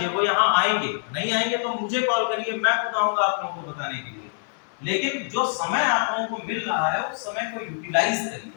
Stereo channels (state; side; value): silent; right; digital silence